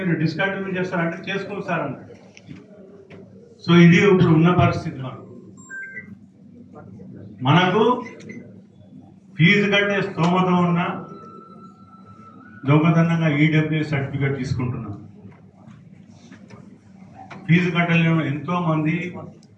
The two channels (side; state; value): both; identical; correlation 1.00